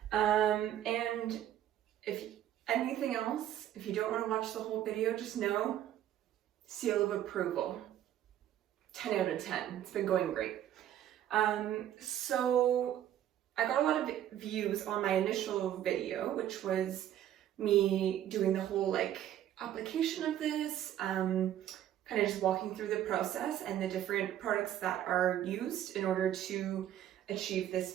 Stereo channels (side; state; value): left; quieter; 11.5 dB